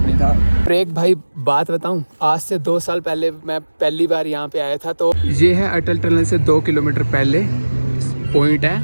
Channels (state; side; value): inverted; both; correlation -1.00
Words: नहीं था। एक भाई बात बताऊं, आज से 2 साल पहले मैं पहली बार यहाँ पे आया था। तो ये है अटल टनल से 2 किलोमीटर पहले पॉइंट